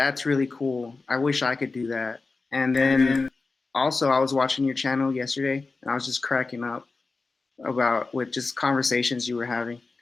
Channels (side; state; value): right; quieter; 3.9 dB